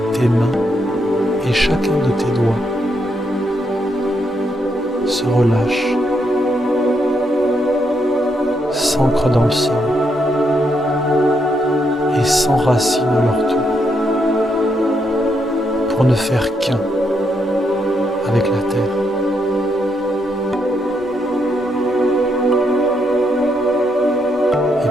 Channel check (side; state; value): both; normal; correlation 0.78